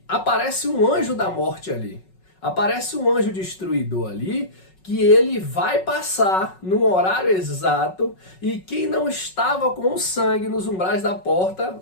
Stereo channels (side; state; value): right; late; 5.4 ms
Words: aparece um anjo da morte ali. Aparece um anjo destruidor ali, que ele vai passar no horário exato, e quem não estava com o sangue nos umbrais da porta,